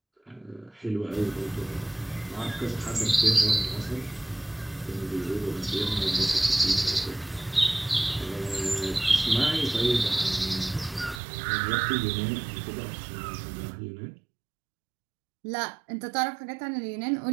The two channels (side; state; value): left; drops out; at 11.2 s